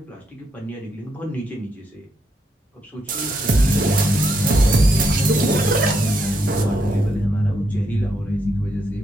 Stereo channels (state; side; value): normal; both; correlation 0.78